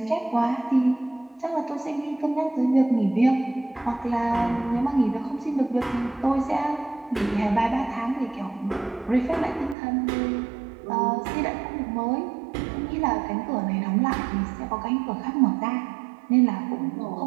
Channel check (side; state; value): left; drops out; at 9.8 s